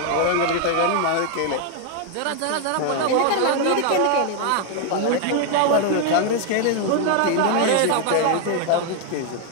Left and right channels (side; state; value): both; different; correlation 0.00